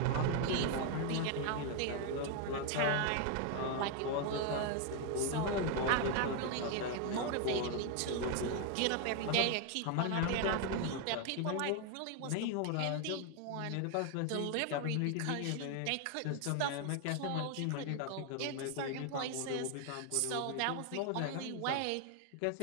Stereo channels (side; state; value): both; different; correlation 0.01